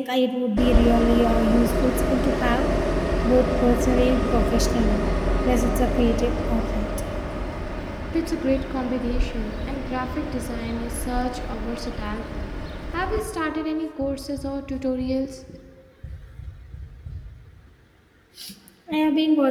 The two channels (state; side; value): identical; both; correlation 1.00